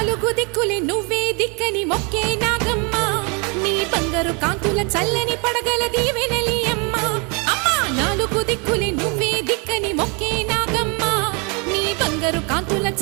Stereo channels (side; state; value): left; quieter; 32.4 dB